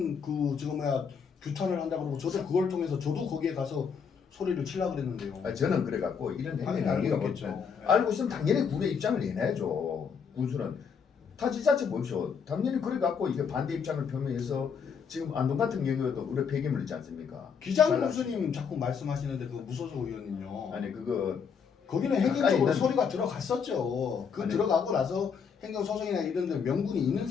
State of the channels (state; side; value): quieter; right; 6.4 dB